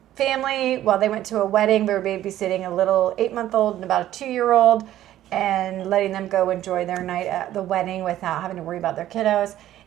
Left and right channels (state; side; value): quieter; left; 13.0 dB